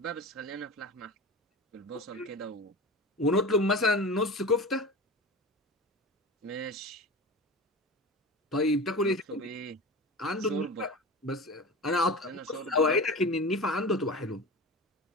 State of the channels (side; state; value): both; normal; correlation 0.31